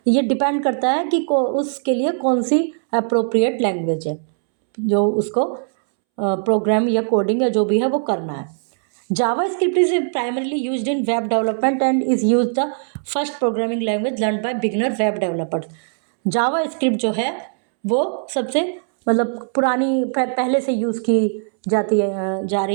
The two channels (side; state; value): left; silent; 66 dB below the other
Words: ये डिपेंड करता है कि उसके लिए कौन सी अप्रोप्रिएट लैंग्वेज है जो उसको प्रोग्राम या कोडिंग या जो भी है वो करना है। JavaScript is primarily used in web development and is use the first programming language learn by beginner web developers. JavaScript जो है वो सबसे मतलब पुरानी पहले से यूज़ की जा